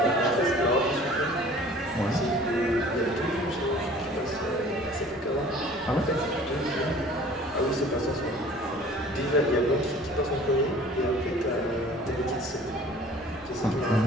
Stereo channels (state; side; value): normal; both; correlation 0.49